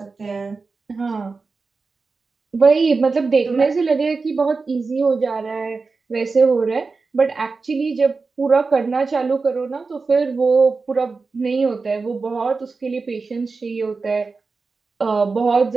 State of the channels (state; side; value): quieter; left; 4.3 dB